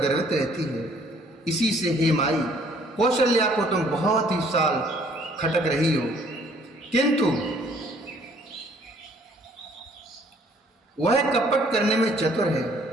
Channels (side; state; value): both; normal; correlation 0.60